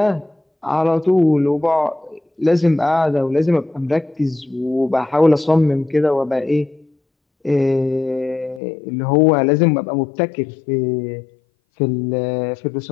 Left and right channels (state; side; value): drops out; right; at 8.6 s